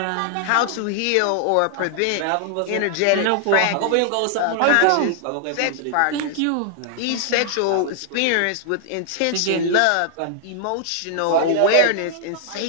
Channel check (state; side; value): different; both; correlation 0.00